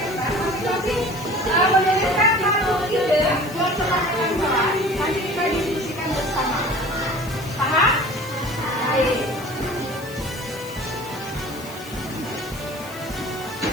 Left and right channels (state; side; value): noise; left; hiss, 17 dB below the sound